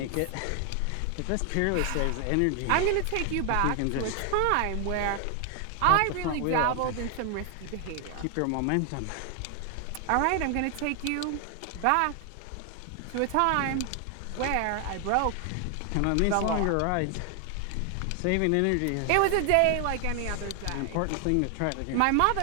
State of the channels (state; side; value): different; both; correlation 0.00